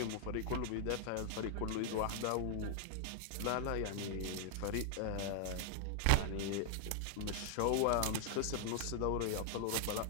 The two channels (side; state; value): both; different; correlation 0.00